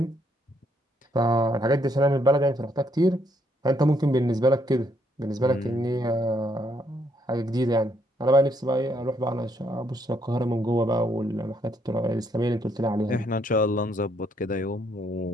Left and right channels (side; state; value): both; normal; correlation 0.72